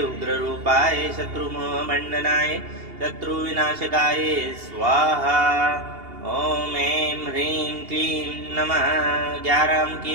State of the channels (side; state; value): left; late; 2.8 ms